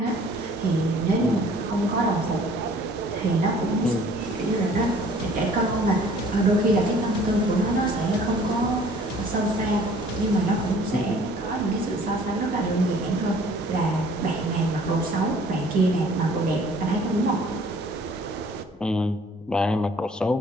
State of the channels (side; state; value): both; normal; correlation 0.54